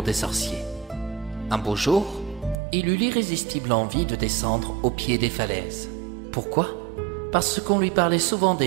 des sorciers. Un beau jour, il eut l'irrésistible envie de descendre au pied des falaises. Pourquoi ? Parce qu'on lui parlait souvent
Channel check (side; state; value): left; drops out; at 2.6 s